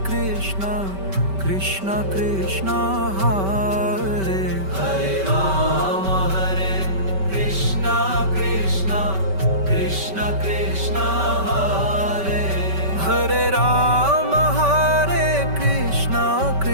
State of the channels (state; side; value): late; left; 5.2 ms